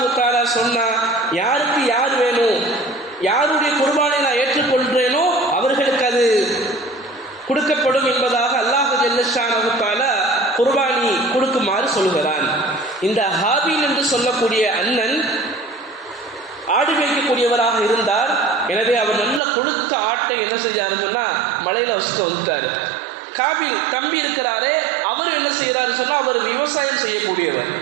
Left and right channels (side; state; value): left; drops out; at 19.4 s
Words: தஆலா சொன்னா, யாருக்கு யார் வேணும், யாருடைய குர்பானை நான் ஏற்றுக்கொள்கிறேனோ அவர்களுக்கு அது கொடுக்கப்படும் என்பதாக அல்லாஹ் ஜல்ல ஷானஹு தஆலா குர்பானி கொடுக்குமாறு சொல்கிறான். இந்த ஹாபில் என்று சொல்லக்கூடிய அண்ணன் ஆடு மேய்க்கக்கூடியவராக இருந்தார். எனவே அவர் நல்ல கொழுத்த ஆட்டை என்ன செஞ்சாருன்னா மலையில வச்சுட்டு வந்துட்டாரு. காபில் தம்பி இருக்கிறாரே அவர் என்ன செய்யறாரு சொன்னா, அவர் விவசாயம் செய்யக்கூடியவர்.